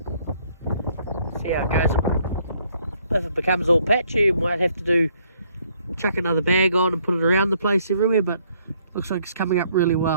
See how it goes. If it becomes all patchy, we might have to chuck another bag on and put it around the place everywhere, but looks like it's coming up really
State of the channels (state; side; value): inverted; both; correlation -0.67